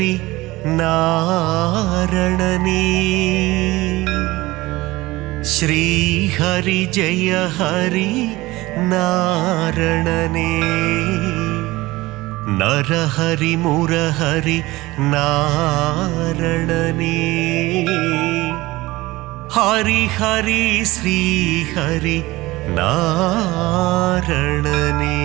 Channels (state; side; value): quieter; left; 19.7 dB